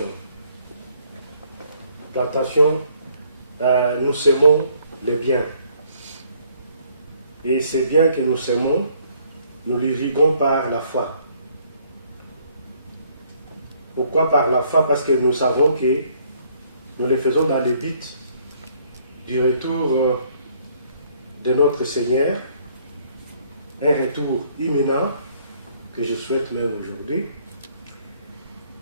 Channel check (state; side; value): inverted; both; correlation -0.65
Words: Plantation, nous semons les biens. Et ces biens que nous semons, nous l'irriguons par la foi. Pourquoi par la foi? Parce que nous savons que nous les faisons dans le but du retour de notre Seigneur, un retour imminent que je souhaite même aujourd'hui.